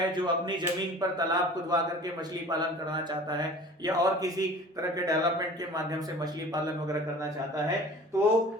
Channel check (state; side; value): normal; both; correlation 0.43